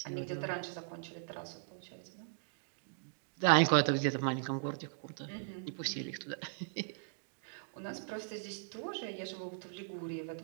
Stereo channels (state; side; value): silent; left; digital silence